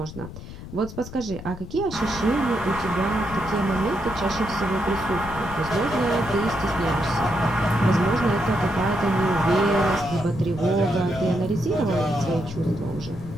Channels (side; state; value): left; noise; rumble, 12 dB below the sound